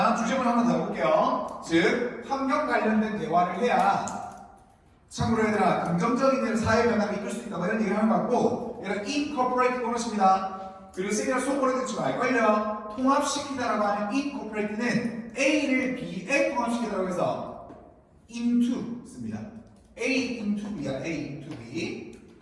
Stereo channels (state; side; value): identical; both; correlation 1.00